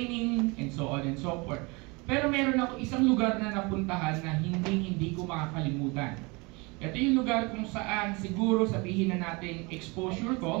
and so on and so forth. Pero meron ako isang lugar na napuntahan na hindi ko makakalimutan. Ito yung lugar kung saan siguro sabihin na natin exposure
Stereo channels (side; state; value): left; quieter; 27.2 dB